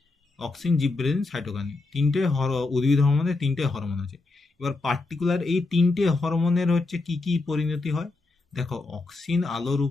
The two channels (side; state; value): right; quieter; 3.4 dB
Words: অক্সিন, জিবরেলিন, সাইটোকাইনিন, উদ্ভিদ হরমোনের 3টে হরমোন আছে। এবার পার্টিকুলার এই 3টে হরমোনের হচ্ছে কি কি পরিণতি হয় দেখো। অক্সিন আলোর